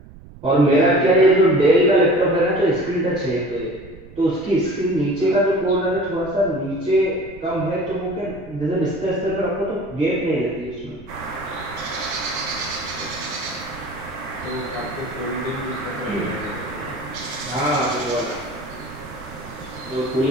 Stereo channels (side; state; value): right; noise; rumble, 19 dB below the sound